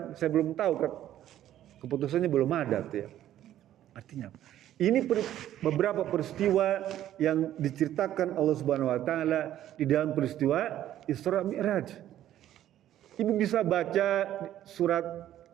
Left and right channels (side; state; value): left; quieter; 12.2 dB